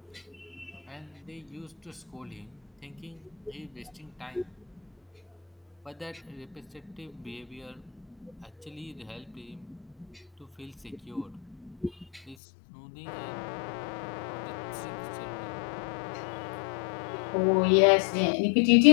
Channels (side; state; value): right; drops out; at 12.4 s